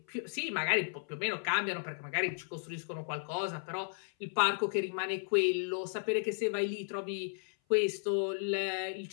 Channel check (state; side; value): silent; right; 55 dB below the other